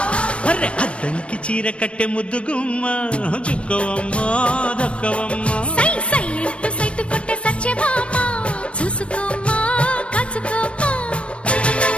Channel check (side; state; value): right; late; 0.060 ms